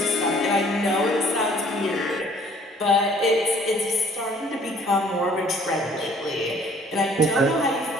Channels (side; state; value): both; normal; correlation 0.57